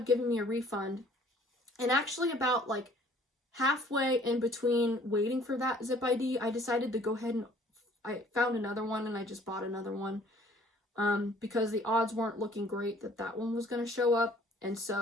giving me a refund. And actually about like halfway in between waiting for that Zip ID, I decided to go ahead and I found another one, and I just bought another one. Because the odds weren't looking great that that one was going to show up. And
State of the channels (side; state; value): both; normal; correlation 0.55